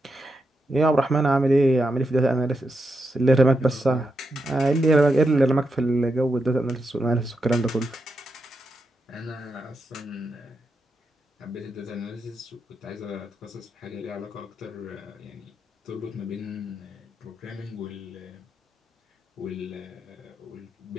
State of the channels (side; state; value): both; normal; correlation 0.85